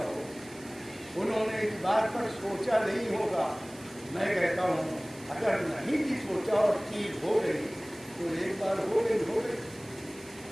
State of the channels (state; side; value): noise; right; hiss, 20 dB below the sound